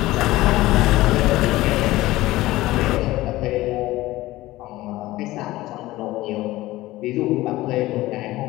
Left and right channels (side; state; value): right; quieter; 17.6 dB